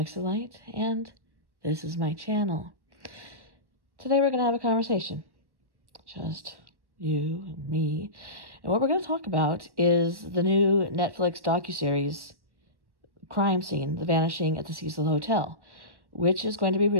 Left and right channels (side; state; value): left; late; 1.1 ms